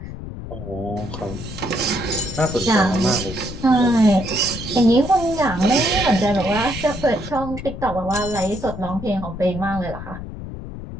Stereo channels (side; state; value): left; noise; rumble, 10 dB below the sound